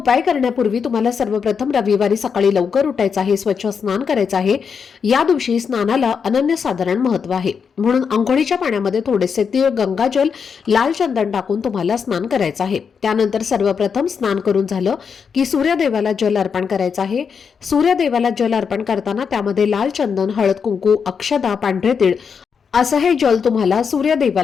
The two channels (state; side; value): quieter; right; 6.3 dB